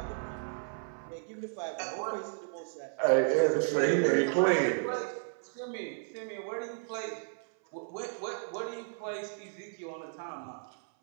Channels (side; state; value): left; silent; 55 dB below the other